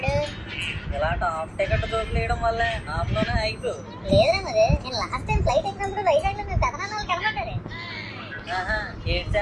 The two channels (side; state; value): both; identical; correlation 1.00